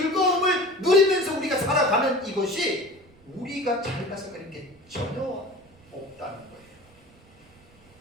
누리면서 우리가 살아가는 이것이 우리가 잘나서 그런 게 전혀 없다는 거예요.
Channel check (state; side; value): noise; right; rumble, 28 dB below the sound